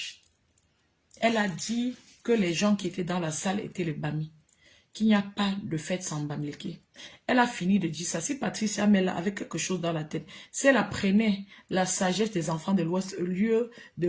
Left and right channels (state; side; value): identical; both; correlation 1.00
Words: Elle a dit que les gens qui étaient dans la salle étaient les Bami. Qu'il n'y a pas de fête sans Bamileke. Elle a fini de dire ça. Si Patricia Mel avait quelque chose dans la tête, si elle apprenait la sagesse des enfants de l'Ouest, au lieu de